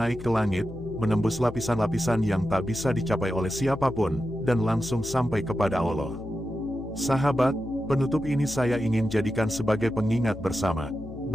ke langit, menembus lapisan-lapisan yang tak bisa dicapai oleh siapapun, dan langsung sampai kepada Allah. Sahabat, penutup ini saya ingin jadikan sebagai pengingat bersama,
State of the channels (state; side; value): noise; left; hum, 13 dB below the sound